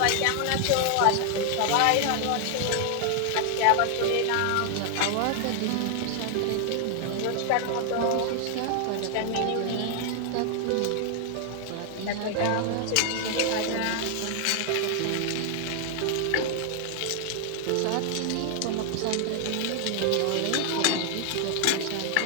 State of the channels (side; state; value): both; different; correlation 0.00